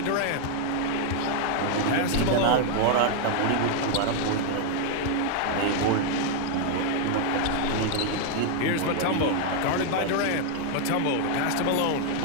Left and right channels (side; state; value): both; different; correlation 0.00